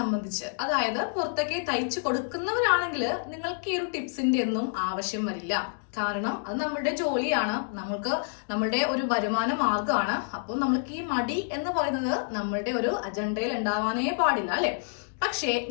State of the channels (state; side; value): silent; right; digital silence